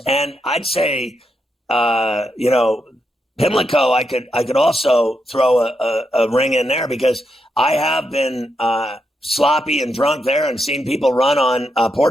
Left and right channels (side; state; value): both; normal; correlation 0.82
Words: And I'd say, Pimlico, I could also throw a ring in there because I have been sloppy and drunk there and seen people run on